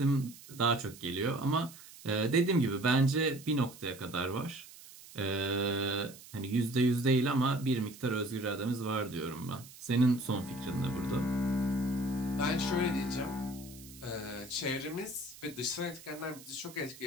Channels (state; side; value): noise; right; hiss, 18 dB below the sound